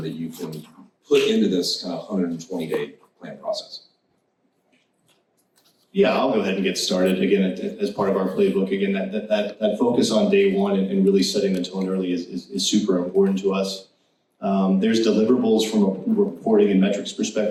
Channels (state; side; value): identical; both; correlation 1.00